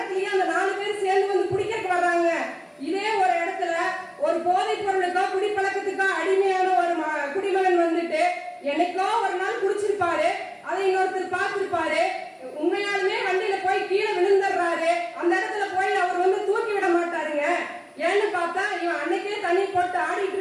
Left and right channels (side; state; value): both; identical; correlation 1.00